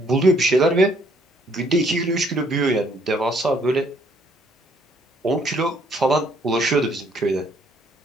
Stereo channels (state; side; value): normal; both; correlation 0.66